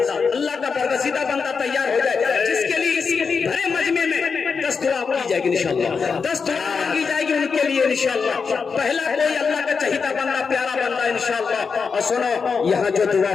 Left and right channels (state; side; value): quieter; right; 5.4 dB